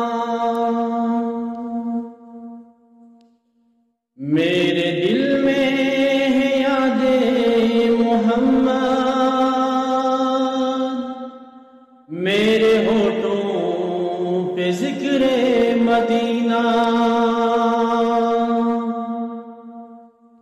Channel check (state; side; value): identical; both; correlation 1.00